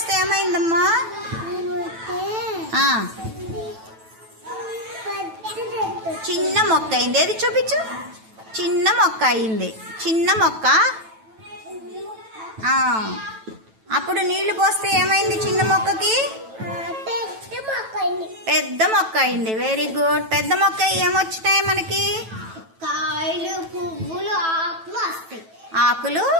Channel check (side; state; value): left; late; 9.1 ms